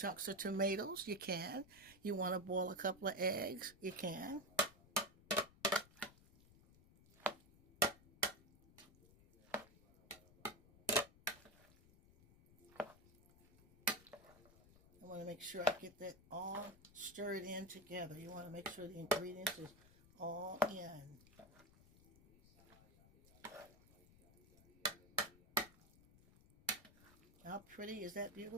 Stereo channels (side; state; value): left; noise; rumble, 25 dB below the sound